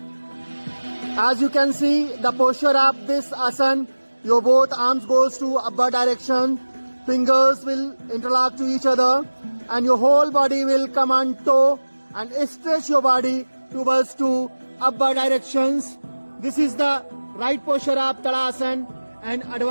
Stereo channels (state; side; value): inverted; both; correlation -1.00